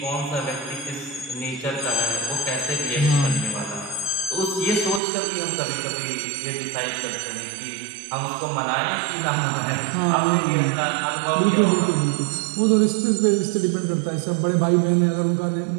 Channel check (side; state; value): left; drops out; at 5.0 s